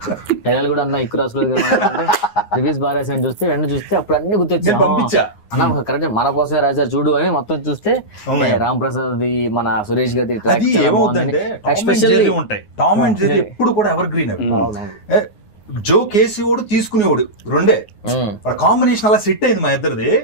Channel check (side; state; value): right; late; 9.6 ms